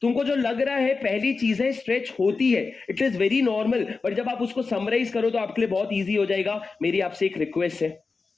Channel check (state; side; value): quieter; right; 4.3 dB